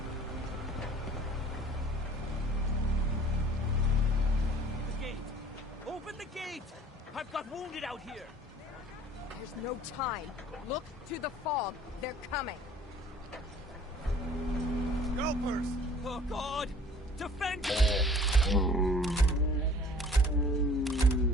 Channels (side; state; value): both; normal; correlation 0.50